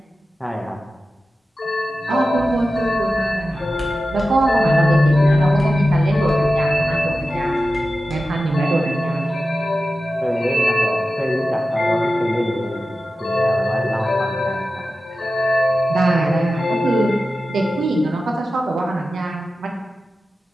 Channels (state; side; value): normal; both; correlation 0.93